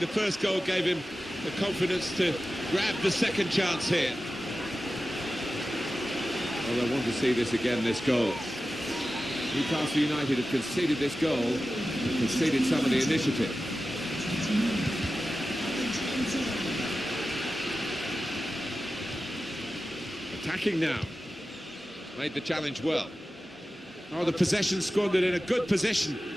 the first goal gave him the confidence to grab the second chance here. Well, I want to see this again, this goal. Newcastle United have conceded this goal, conceded some of the initiative. Attacking now. Made the challenge well. Oh, the possession squandered in a good position.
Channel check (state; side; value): normal; both; correlation 0.94